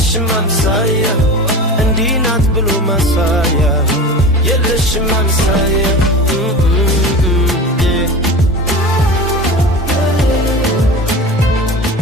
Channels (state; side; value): normal; both; correlation 0.32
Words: አምሳያ እንዲህ ናት ብሎ ማሳያ የለሽም አምሳያ